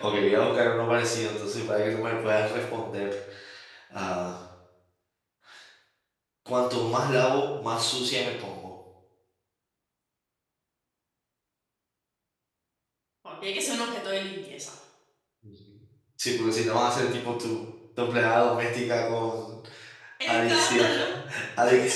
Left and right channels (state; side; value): identical; both; correlation 1.00